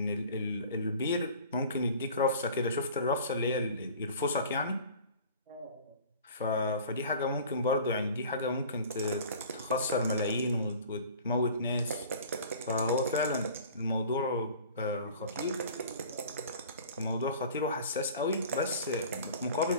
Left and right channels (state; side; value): inverted; both; correlation -0.44